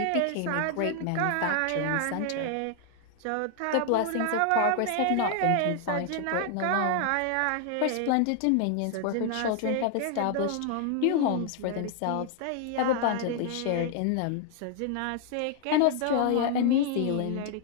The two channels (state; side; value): different; both; correlation 0.00